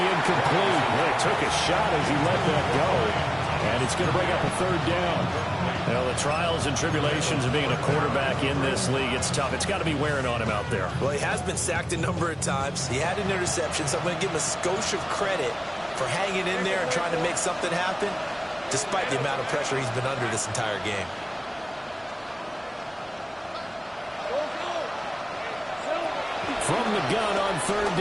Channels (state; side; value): identical; both; correlation 1.00